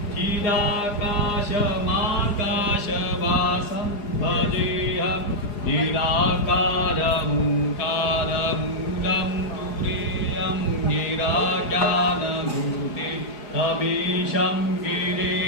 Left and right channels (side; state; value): right; late; 4.8 ms